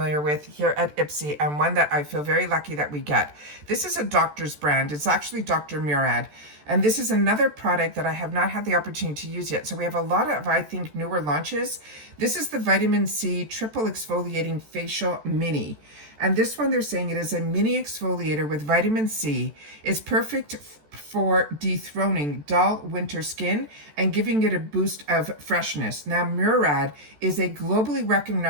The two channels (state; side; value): late; left; 14 ms